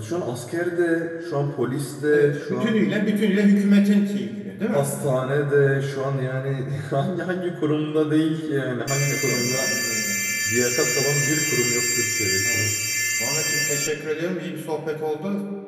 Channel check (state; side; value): identical; both; correlation 1.00